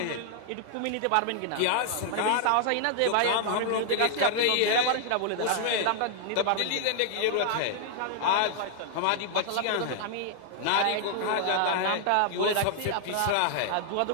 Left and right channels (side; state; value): both; different; correlation 0.00